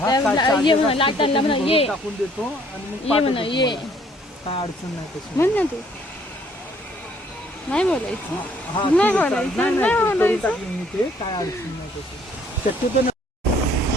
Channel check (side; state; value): both; normal; correlation 0.62